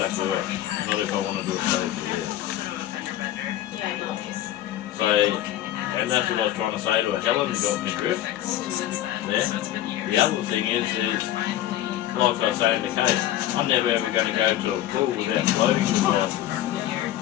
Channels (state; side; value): quieter; right; 13.2 dB